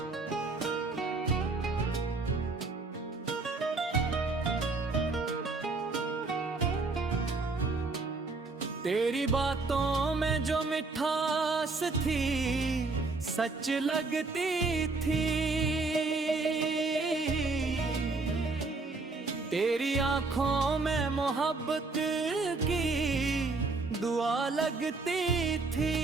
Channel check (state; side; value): quieter; left; 3.7 dB